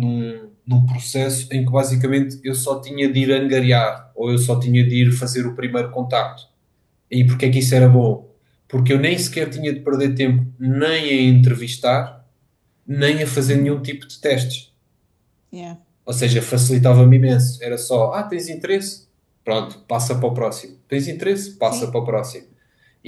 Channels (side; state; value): both; identical; correlation 1.00